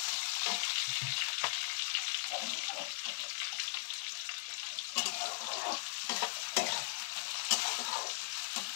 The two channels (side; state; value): right; silent; digital silence